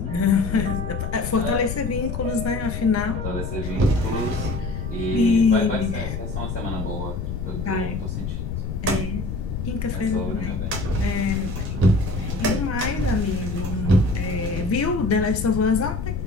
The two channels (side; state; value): left; noise; rumble, 4 dB below the sound